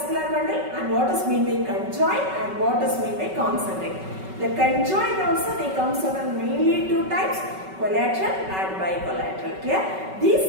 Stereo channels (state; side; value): late; left; 5.3 ms